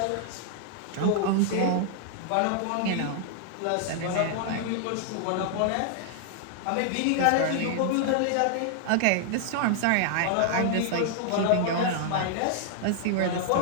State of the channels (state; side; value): different; both; correlation -0.01